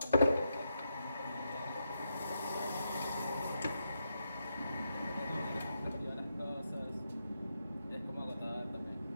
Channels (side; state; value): both; inverted; correlation -0.83